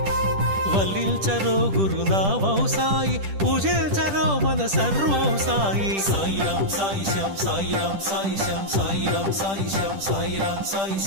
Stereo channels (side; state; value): left; late; 10 ms